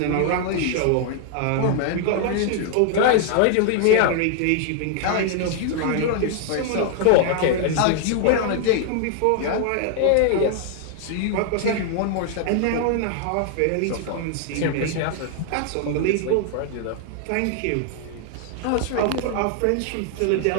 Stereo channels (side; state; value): both; different; correlation 0.00